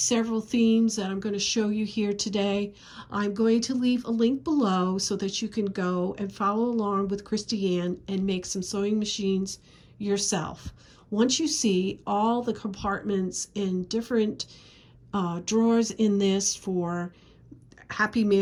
themes that I'm going to show you here today. I'm going to leave a link below so that you can go and follow along with Kristianne and make some sewing machines yourself. Once you see all the compartments and different drawers in this for Happy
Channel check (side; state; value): both; identical; correlation 1.00